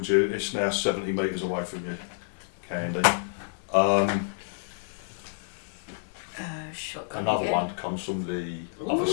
you. It's now 70 metres away from you, Candy. Shotgun Another again. one comes from the other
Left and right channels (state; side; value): silent; right; digital silence